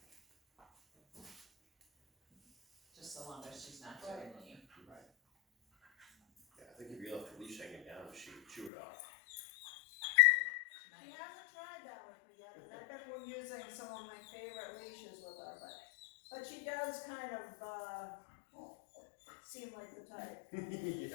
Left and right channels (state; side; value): drops out; right; at 8.7 s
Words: Just so long as she's not doing you. Right. Yeah, I think if you left the leash hanging down, she would chew it off. She hasn't tried that with me yet, and I've been using some of my favorite leashes with her, but she does kind of, seem like the type.